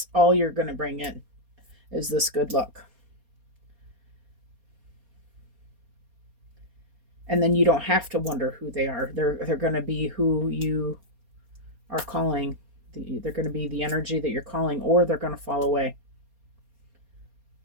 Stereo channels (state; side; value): late; left; 4.3 ms